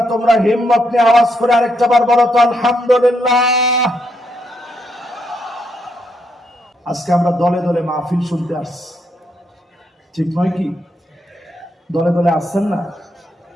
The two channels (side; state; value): both; normal; correlation 0.78